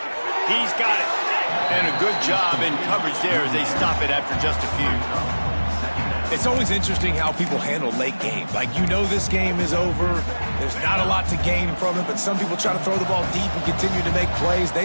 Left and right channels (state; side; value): inverted; both; correlation -1.00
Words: He's got it. And a good job in coverage there as they stop it after just a few. It's always interesting how people handle late games. Like, you know this game is over. There's not a lot to gain from it, but some people try to throw the ball deep and continue to make plays.